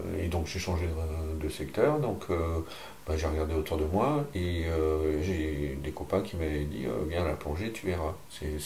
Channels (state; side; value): identical; both; correlation 1.00